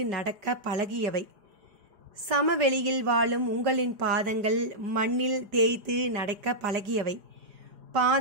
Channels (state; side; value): late; left; 4.9 ms